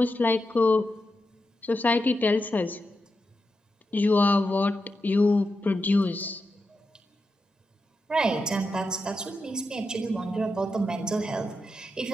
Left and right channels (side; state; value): both; normal; correlation 0.87